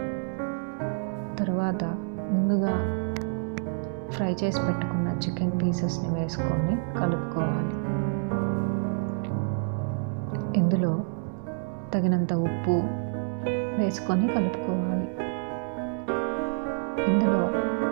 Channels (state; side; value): silent; left; 59 dB below the other